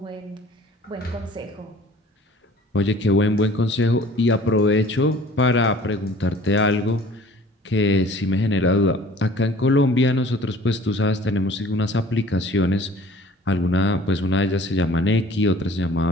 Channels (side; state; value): both; normal; correlation 0.50